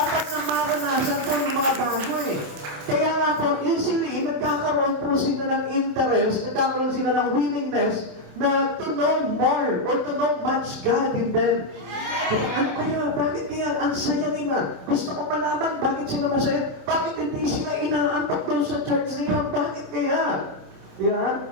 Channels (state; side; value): late; left; 27 ms